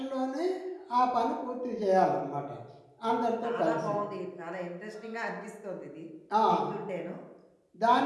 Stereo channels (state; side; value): identical; both; correlation 1.00